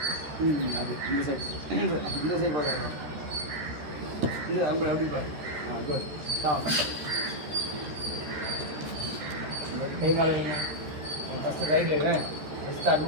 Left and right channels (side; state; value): left; late; 13 ms